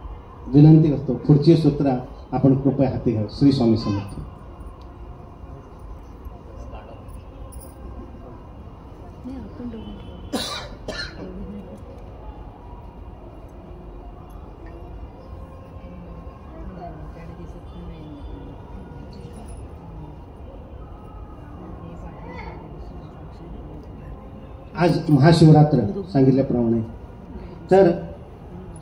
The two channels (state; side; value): identical; both; correlation 1.00